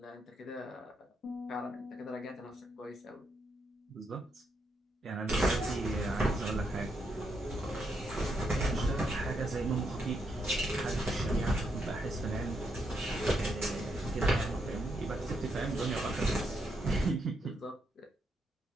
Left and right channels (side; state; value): both; normal; correlation 0.79